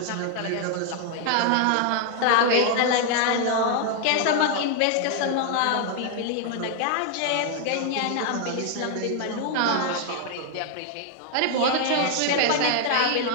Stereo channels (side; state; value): both; different; correlation 0.00